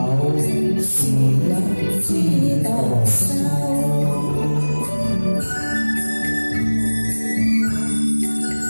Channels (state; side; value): inverted; both; correlation -1.00